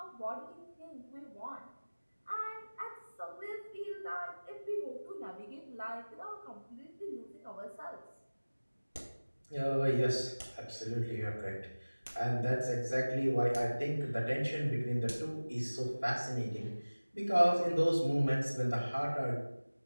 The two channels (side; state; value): both; inverted; correlation -1.00